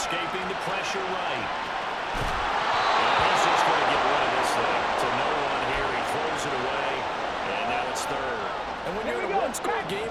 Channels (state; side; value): identical; both; correlation 1.00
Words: the pressure right. And he's just going to get rid of this thing. To no one here, he throws it away, and now it's third. And when you're in a one-score